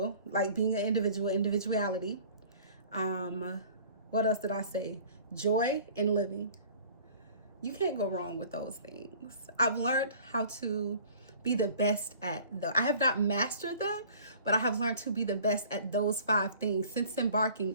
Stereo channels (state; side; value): inverted; both; correlation -0.48